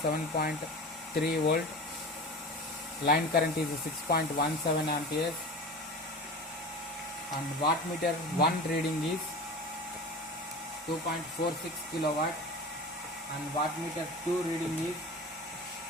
volt, line current is 6.17 amperes, and wattmeter 1 reading is 2.46 kilowatt, and wattmeter 2 reading is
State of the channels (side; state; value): both; normal; correlation 0.33